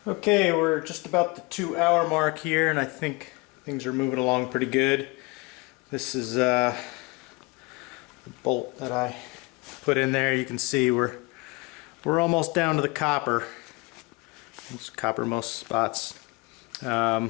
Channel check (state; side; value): quieter; right; 26.2 dB